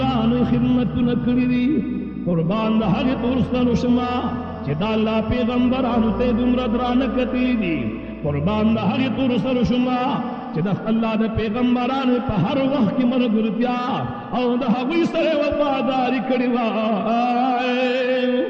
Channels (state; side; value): identical; both; correlation 1.00